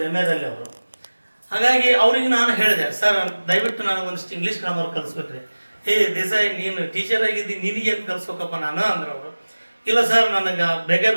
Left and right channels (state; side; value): inverted; both; correlation -1.00